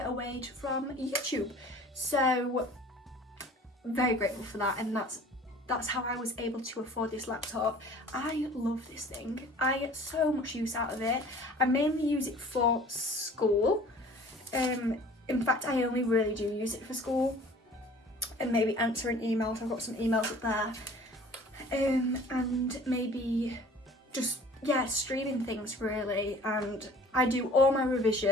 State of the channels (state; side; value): normal; both; correlation 0.48